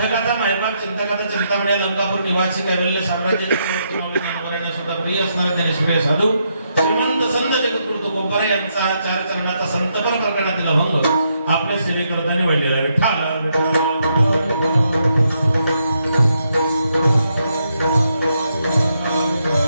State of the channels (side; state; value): both; inverted; correlation -0.79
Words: मायबाप चिंतकाचा चिंतामणी लंकापूर निवासी कैवल्य साम्राज्याचे ज्ञानवरायांना सुद्धा प्रिय असणारे ते निष्क्रिय साधू श्रीमंत संत जगद्गुरु तुकोबाराय यांचा हा चार चरणाचा संतपर प्रकरणातील अभंग आपल्या सेवेकरताने वाढलेला विठ्ठल